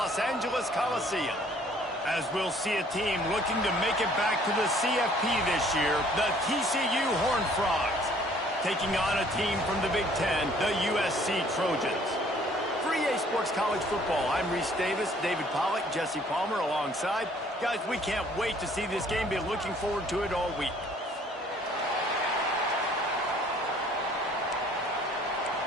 Angeles Coliseum. As we'll see a team looking to make it back to the CFP this year, the TCU Horned Frogs, taking on a team from the Big Ten, the USC Trojans. For EA Sports College Football, I'm Reese Davis, David Pollack, Jesse Palmer alongside. Guys, we can't wait to see this game. Be looking forward to it all week.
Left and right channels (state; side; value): normal; both; correlation 0.58